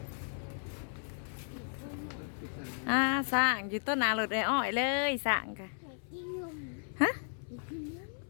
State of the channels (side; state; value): right; silent; 54 dB below the other